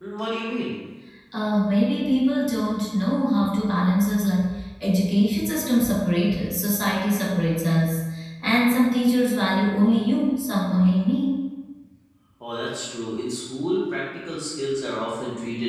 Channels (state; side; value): identical; both; correlation 1.00